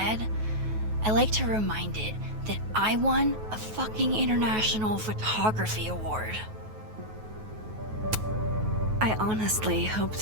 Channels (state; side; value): late; left; 9.3 ms